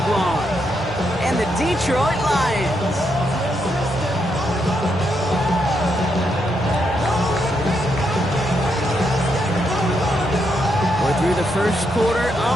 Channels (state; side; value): normal; both; correlation 0.80